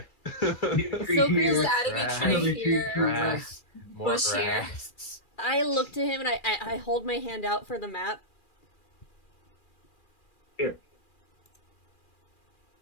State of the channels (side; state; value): right; late; 2.4 ms